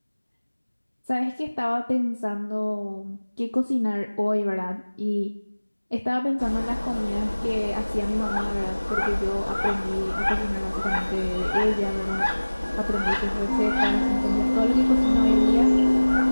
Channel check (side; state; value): both; inverted; correlation -1.00